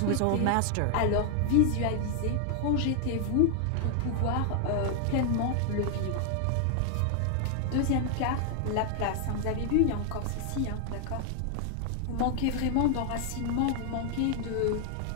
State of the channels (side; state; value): both; different; correlation 0.00